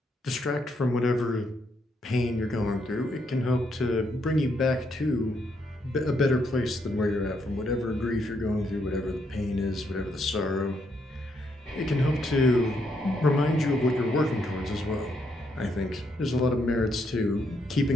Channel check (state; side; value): normal; both; correlation 0.76